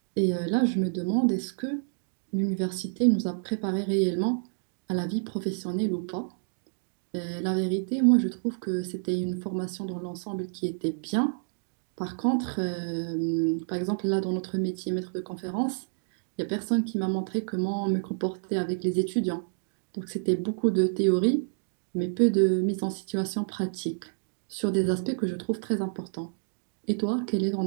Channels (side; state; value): left; silent; digital silence